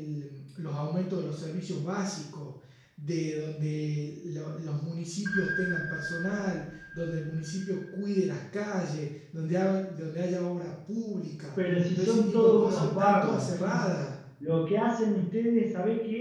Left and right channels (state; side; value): identical; both; correlation 1.00